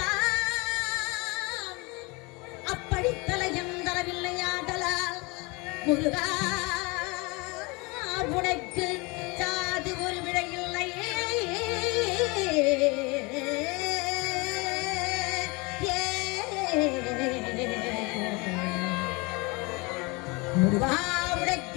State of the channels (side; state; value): right; quieter; 27.0 dB